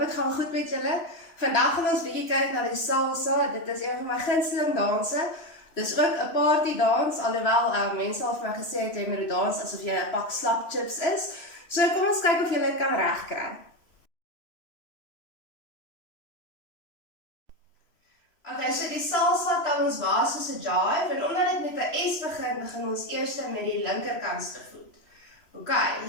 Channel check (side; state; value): right; late; 3.0 ms